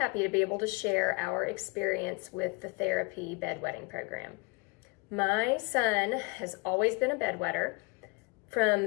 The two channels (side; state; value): right; quieter; 27.8 dB